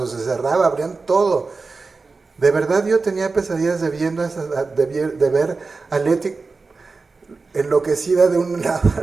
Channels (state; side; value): quieter; left; 4.1 dB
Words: se cerraba, abrían todo. De verdad yo tenía pesadillas de ver a Leti enloquecida de un lado